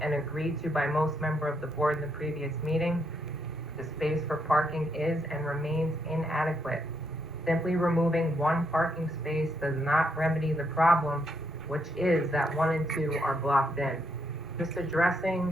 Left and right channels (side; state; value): both; normal; correlation 0.77